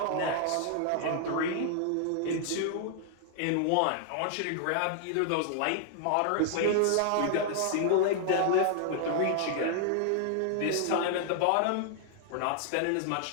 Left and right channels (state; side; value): different; both; correlation 0.00